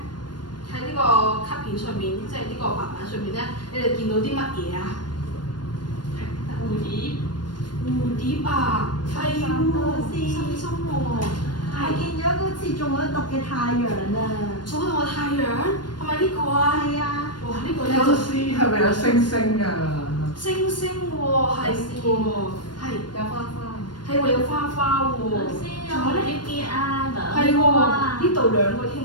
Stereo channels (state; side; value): late; right; 0.71 ms